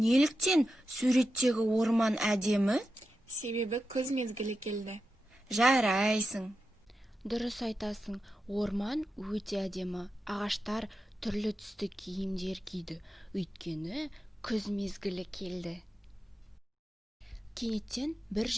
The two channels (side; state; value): both; normal; correlation 0.90